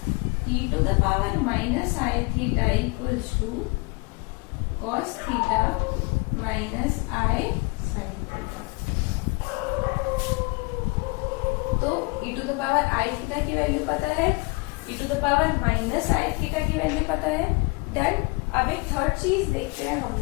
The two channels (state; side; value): quieter; right; 28.1 dB